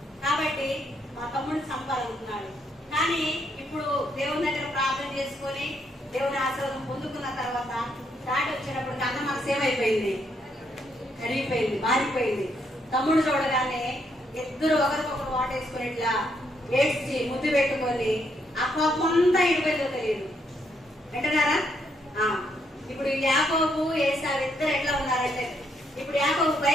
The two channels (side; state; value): both; normal; correlation 0.75